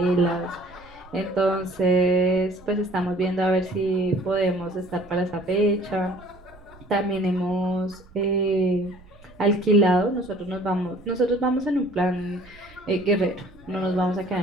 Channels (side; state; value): right; noise; rumble, 24 dB below the sound